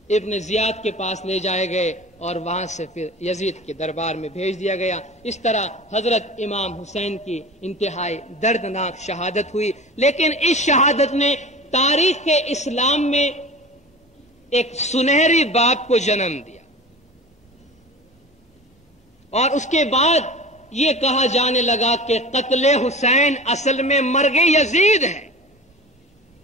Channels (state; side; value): normal; both; correlation 0.36